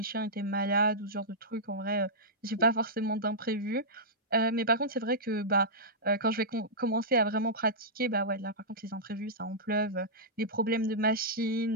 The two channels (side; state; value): both; normal; correlation -0.14